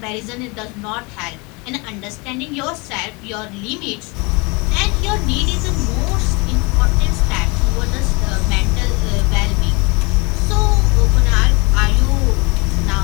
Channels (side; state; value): right; quieter; 28.2 dB